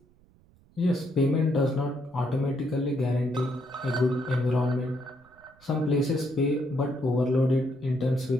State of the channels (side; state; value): right; noise; rumble, 30 dB below the sound